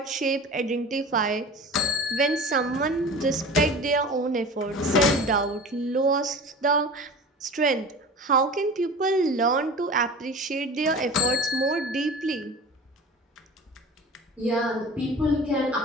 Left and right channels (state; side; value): normal; both; correlation 0.37